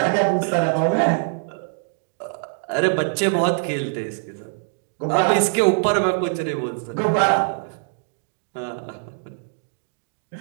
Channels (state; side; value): silent; left; digital silence